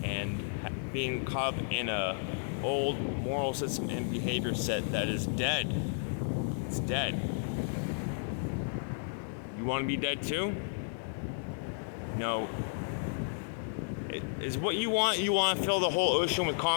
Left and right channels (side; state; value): right; silent; 56 dB below the other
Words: and being caught up in a old moral system and behavior set that is dead. It's dead. You want to be dead too? No. Is what you want to fill the whole ocean with